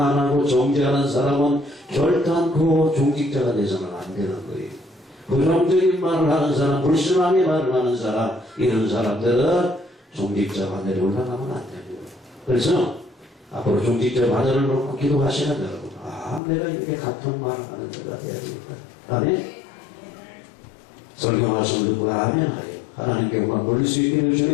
정죄하는 사람은 결단코 종직자가 돼서는 안 되는 거예요. 부정적인 말을 하는 사람, 불신앙의 말을 하는 사람, 이런 사람들은 종직자 바늘에 올라가면 안 됩니다. 그래서 앞으로 종직자 바늘을 놓고 기도하시는 여러분, 내가 이렇게 같은 말을 하는 자가 돼야 되겠다. 아멘. 설교하시는 듣고 아멘 하여 하나님께 영광 돌릴 수 있기를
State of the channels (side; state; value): right; drops out; at 16.4 s